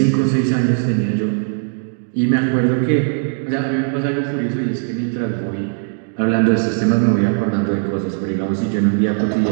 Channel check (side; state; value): left; silent; digital silence